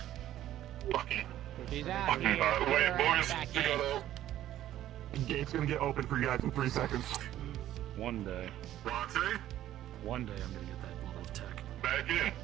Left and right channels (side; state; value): left; quieter; 12.8 dB